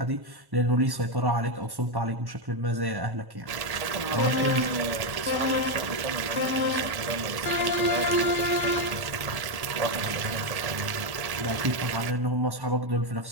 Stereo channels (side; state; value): left; late; 1.1 ms